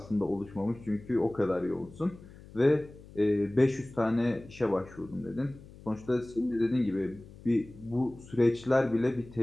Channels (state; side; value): noise; left; hum, 19 dB below the sound